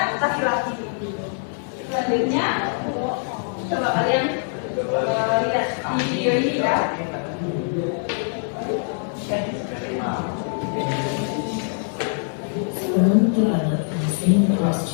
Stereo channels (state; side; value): silent; right; digital silence